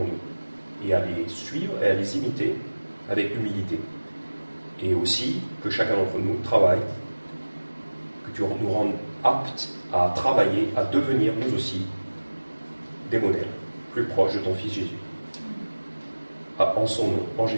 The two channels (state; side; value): inverted; both; correlation -1.00